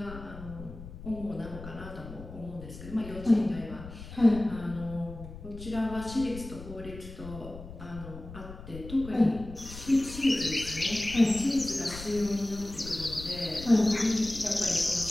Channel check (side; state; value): left; noise; rumble, 13 dB below the sound